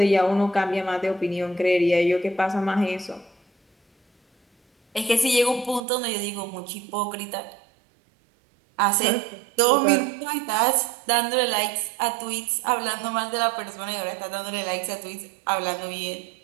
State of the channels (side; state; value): left; drops out; at 5.8 s